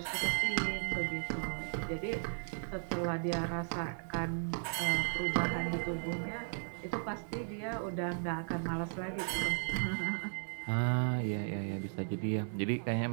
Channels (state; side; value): silent; left; 54 dB below the other